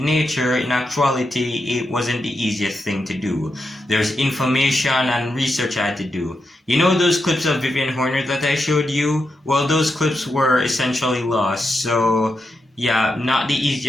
nature, in actuality it wasn't the easiest thing to do. There's information and research I had to do. You know those clips of Vivian Horner that I showed you? Well, those clips were essentially lost, so yeah, not the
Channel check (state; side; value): normal; both; correlation 0.86